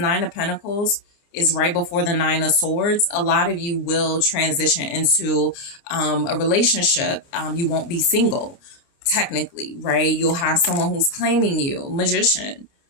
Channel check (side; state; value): right; late; 29 ms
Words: of Pentacles is right before the Nine of Swords, a lot of you will transition into a relationship. You won't be single, technically, right? You'll have someone who's claiming you, Magician.